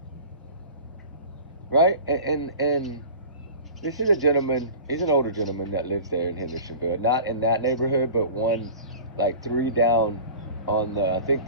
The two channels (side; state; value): both; inverted; correlation -0.39